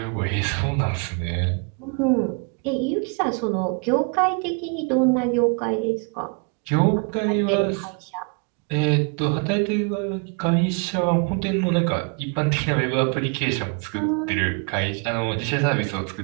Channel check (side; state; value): left; quieter; 36.0 dB